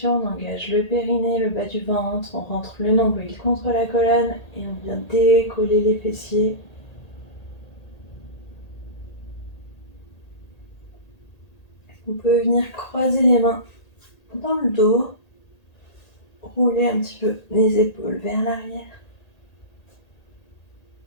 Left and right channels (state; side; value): late; right; 1.8 ms